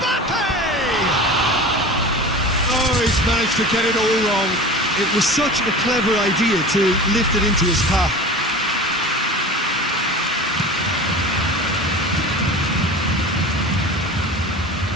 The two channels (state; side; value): normal; both; correlation 0.35